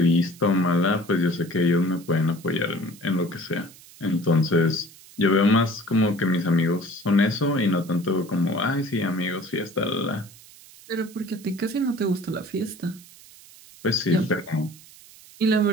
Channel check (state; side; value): noise; right; hiss, 22 dB below the sound